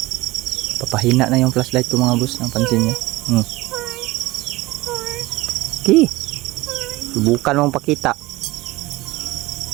Papahina na yung flashlight ko mga boss. Ang pansin niya. Okay. Subukan mong pakita.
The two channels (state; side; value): quieter; left; 20.0 dB